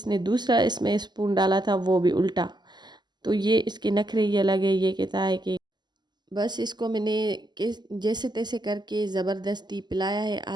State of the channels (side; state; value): left; late; 0.21 ms